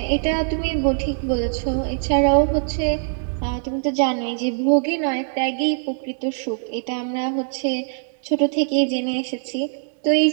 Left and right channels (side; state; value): left; silent; digital silence